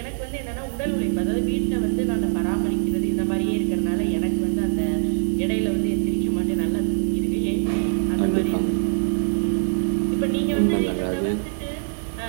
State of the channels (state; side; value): silent; left; digital silence